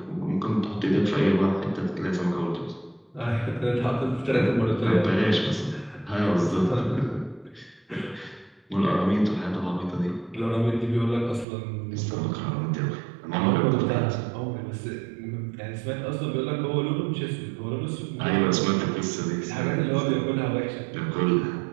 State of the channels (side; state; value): left; drops out; at 11.5 s